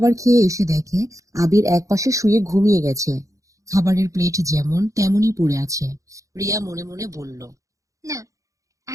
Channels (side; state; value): left; late; 0.16 ms